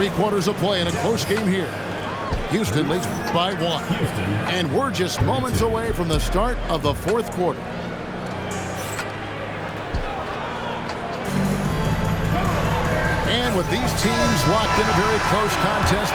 quarters of play in a close game here. Houston leads by 1. And we're just moments away from the start of the 4th quarter. And with these teams locked in a very close contest,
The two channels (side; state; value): both; identical; correlation 1.00